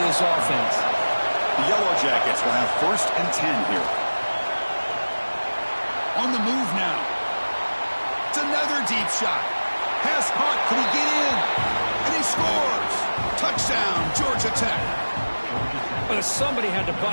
this offense. The Yellow Jackets will have 1st and 10 here. On the move now. It's another deep shot. Pass caught. Can he get in? And he scores. Touchdown, Georgia Tech. But if somebody had to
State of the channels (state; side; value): inverted; both; correlation -1.00